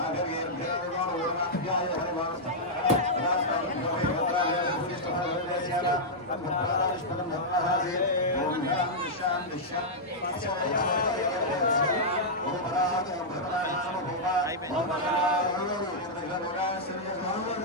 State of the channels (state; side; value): normal; both; correlation -0.08